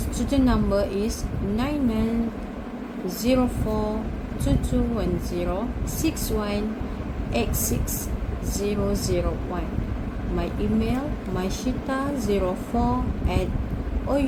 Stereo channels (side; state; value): both; identical; correlation 1.00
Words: number is 9904221061860001. My email